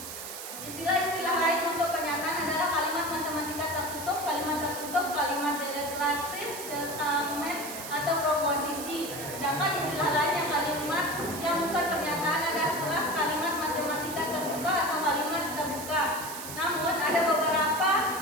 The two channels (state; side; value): noise; right; hiss, 9 dB below the sound